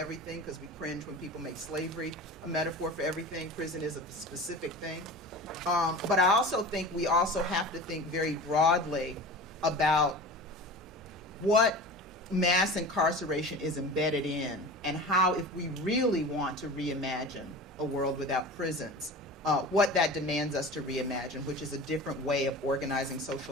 because we cringe when people make slavery a metaphor for everything. Prison is a specific thing. But I also think we also have to think very broadly about what mass incarceration is embedded in, and how, if we really want to reimagine a world without prisons, what that demands us to reimagine, which is a different way of organizing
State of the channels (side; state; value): both; normal; correlation 0.35